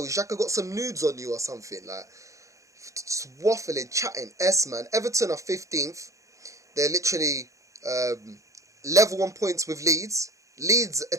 Xhaka got some nudes on you or something. Like, just waffling, chatting. Man. Everton are 15th. They're literally level on points with Leeds. Leeds, a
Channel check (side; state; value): left; late; 0.15 ms